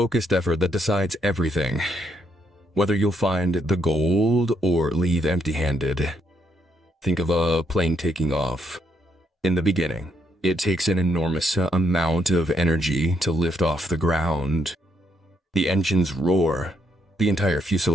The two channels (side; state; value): both; normal; correlation 0.75